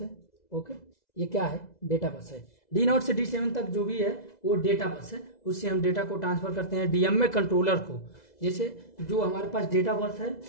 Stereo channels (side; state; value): right; late; 2.0 ms